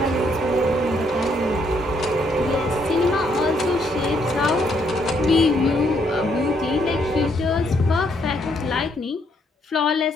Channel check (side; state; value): both; normal; correlation 0.72